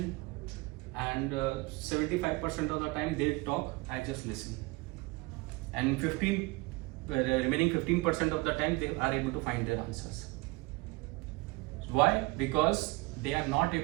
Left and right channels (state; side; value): quieter; left; 23.9 dB